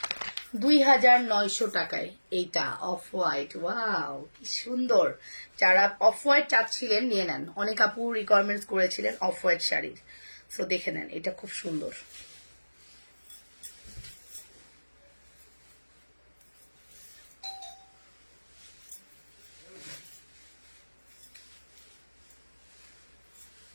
2900 টাকায় এইটা অফ হোয়াইট। ওয়াও, কি সুন্দর। যারা অফ হোয়াইট চাচ্ছিলেন নিয়ে নেন, অনেক আপু রিকোয়ারমেন্টস করেছিলেন অফ হোয়াইট শাড়ির। সো দেখে নেন, এটা খুব সুন্দর।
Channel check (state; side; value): inverted; both; correlation -1.00